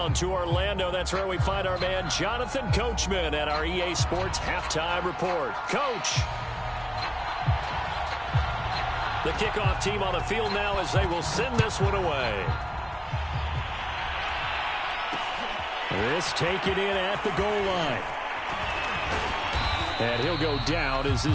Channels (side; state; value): both; identical; correlation 1.00